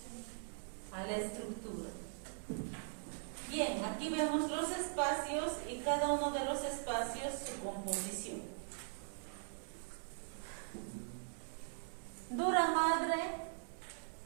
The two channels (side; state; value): left; silent; 50 dB below the other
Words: a la estructura. Bien, aquí vemos los espacios y cada uno de los espacios su composición. Dura madre,